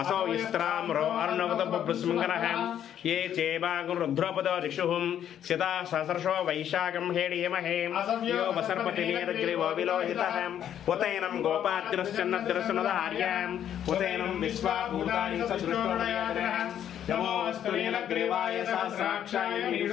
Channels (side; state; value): right; quieter; 10.0 dB